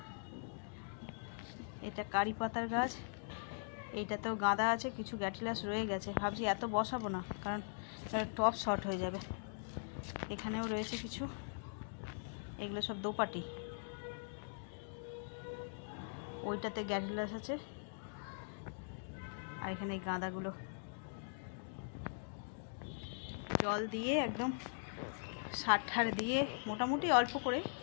এটা কারি পাতার গাছ, এইটাতেও গাঁদা আছে, কিছু গ্যাটিলাস রয়ে গেছে। ভাবছি এত বসাবো না, কারণ টপ শর্ট হয়ে যাবে। এখানেও রয়েছে কিছু, এগুলো সব দোপাটি। ওইটাতে গ্যাটিলাস আছে, আর এখানে এই গাঁদাগুলো জল দিয়ে একদম সার ঠার দিয়ে মোটামুটি অল্প করে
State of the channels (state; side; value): silent; right; digital silence